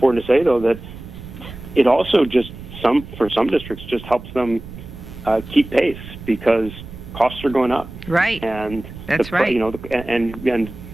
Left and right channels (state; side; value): noise; right; rumble, 14 dB below the sound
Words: to say, though, that it also for some districts just helps them keep pace because costs are going up. Right. And that's right. And